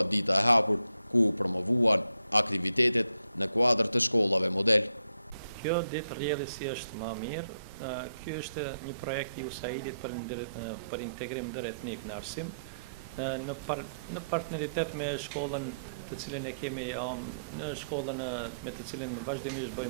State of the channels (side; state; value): both; inverted; correlation -0.78